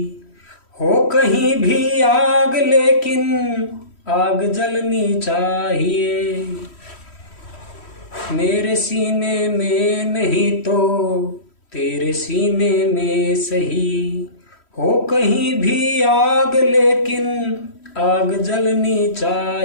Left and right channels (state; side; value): late; right; 3.1 ms